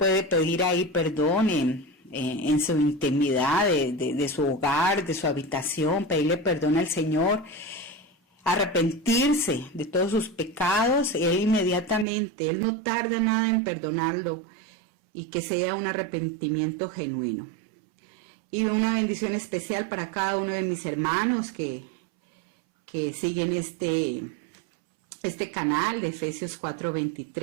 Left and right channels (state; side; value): drops out; left; at 12.1 s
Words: pedir ahí perdón en su intimidad de su hogar, de su habitación, pedirle perdón al Señor, arrepentirse de todos sus pecados. Él inmediatamente, Él no tarda nada en perdonarlo, y que sea un arrepentimiento genuino. Y una bendición especial para cada uno de mis hermanos que siguen este canal de Efesios